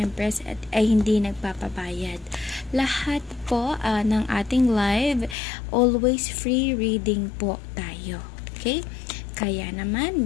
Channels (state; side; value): drops out; right; at 5.4 s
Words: ay hindi nagpapabayad. Lahat po ng ating live, always free reading po tayo. Okay? Kaya